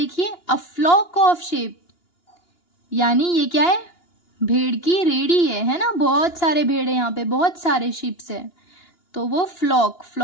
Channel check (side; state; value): right; late; 2.9 ms